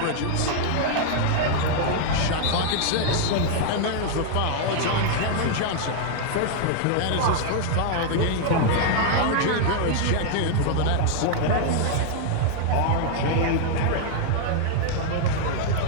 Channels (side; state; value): both; different; correlation 0.00